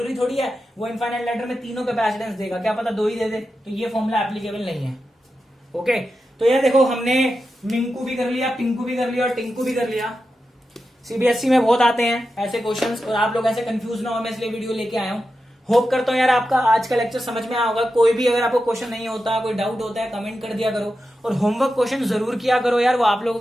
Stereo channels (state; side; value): normal; both; correlation 0.90